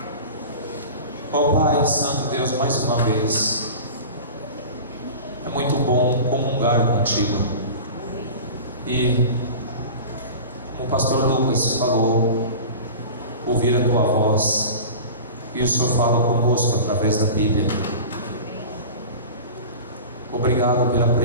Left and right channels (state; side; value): inverted; both; correlation -0.35